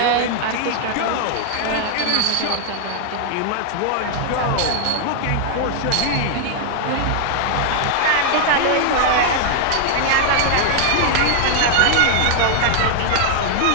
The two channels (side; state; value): both; different; correlation -0.01